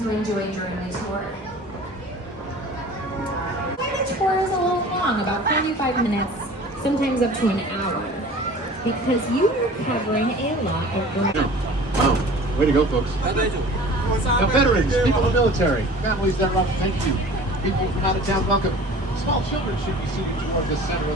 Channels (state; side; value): normal; both; correlation 0.43